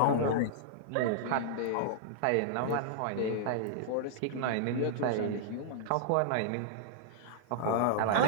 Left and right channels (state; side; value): different; both; correlation -0.01